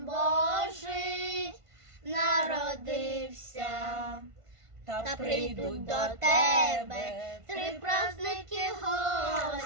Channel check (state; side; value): late; left; 1.5 ms